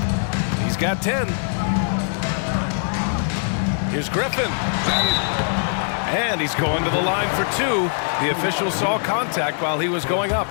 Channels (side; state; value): right; silent; 59 dB below the other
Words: He's got 10. Here's Griffin. And he's going to the line for 2. The official saw contact while he was going up.